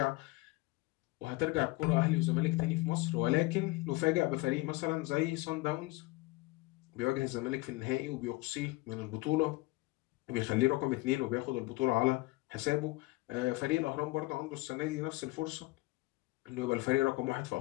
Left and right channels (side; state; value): right; quieter; 21.3 dB